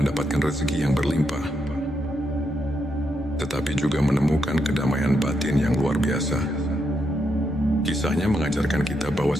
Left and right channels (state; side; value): normal; both; correlation 0.81